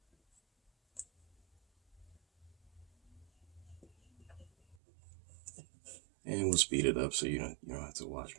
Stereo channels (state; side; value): drops out; left; at 4.8 s